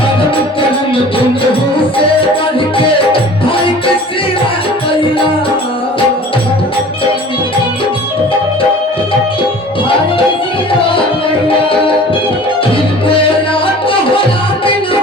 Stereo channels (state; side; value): normal; both; correlation 0.44